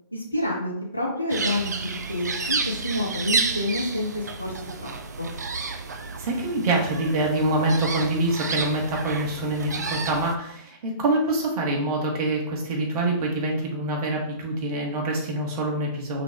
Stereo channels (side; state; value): both; inverted; correlation -0.41